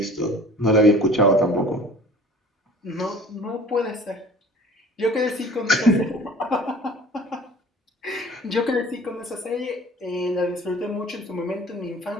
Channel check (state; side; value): normal; both; correlation 0.46